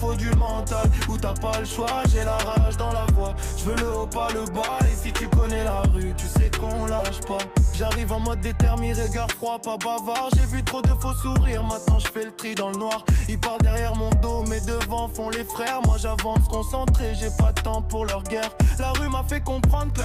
du mental, où t'as pas le choix, j'ai la rage dans la voix. Je veux le haut, pas le bas, et si tu connais la rue, tu sais qu'on lâche pas. J'arrive en mode déterminé, regard froid, pas bavard. J'ai vu trop de faux sourires, maintenant je fais le tri dans le noir. Ils parlent derrière mon dos, mais devant font les frères. Moi j'avance concentré, j'ai pas de temps pour leur guerre. La rue m'a fait comprendre que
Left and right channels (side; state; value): both; identical; correlation 1.00